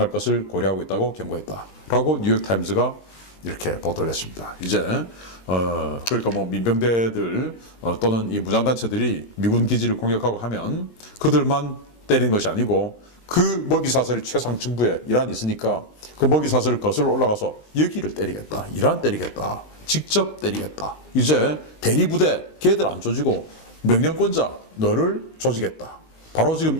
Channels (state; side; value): late; right; 19 ms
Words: 것을 고려하고 있다고 경고했다. 라고 뉴욕타임즈가 이렇게 보도를 했습니다. 이제 그러니까 뭐 민병대들 또는 이 무장단체들이 미군 기지를 공격하고 하면 그들만 때리는 것이 아니고, 그 먹이 사슬이 최상층부에 이란이 있으니까 그 먹이 사슬을 거슬러 올라가서 여기를 때리겠다, 이란 때리겠다, 직접 때리겠다. 이제 대리부대 걔들 안 조지고 명령권자 너를 조지겠다. 바로 지금